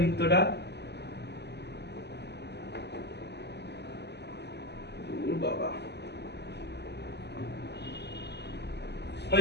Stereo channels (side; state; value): right; late; 0.49 ms